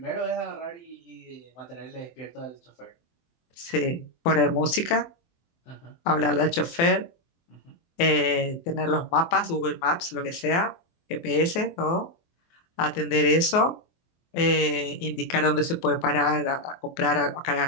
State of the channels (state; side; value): late; right; 24 ms